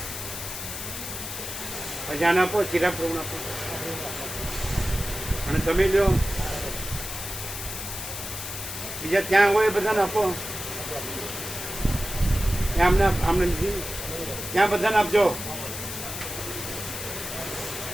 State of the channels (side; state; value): left; noise; hiss, 7 dB below the sound